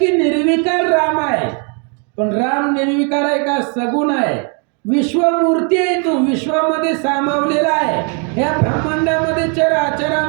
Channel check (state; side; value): quieter; left; 37.7 dB